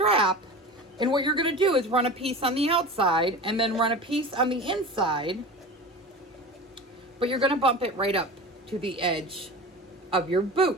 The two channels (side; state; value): both; normal; correlation 0.33